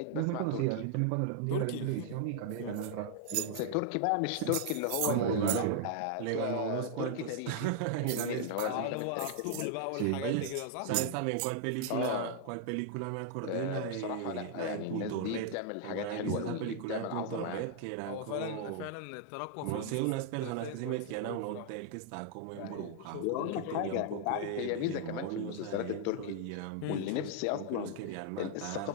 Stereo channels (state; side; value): different; both; correlation -0.01